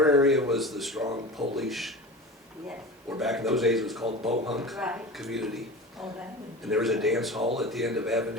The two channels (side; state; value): both; normal; correlation 0.31